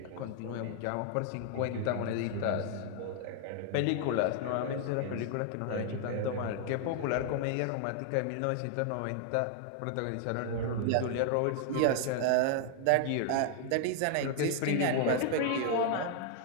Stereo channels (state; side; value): different; both; correlation 0.00